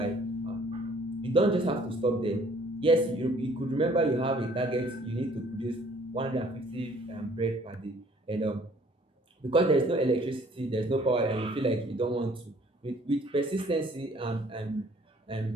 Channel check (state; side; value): normal; both; correlation 0.58